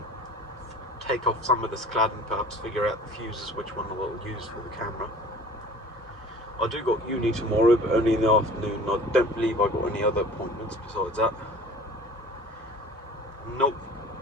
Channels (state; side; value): normal; both; correlation 0.45